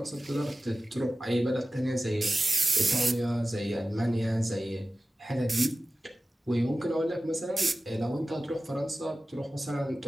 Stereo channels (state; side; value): normal; both; correlation 0.96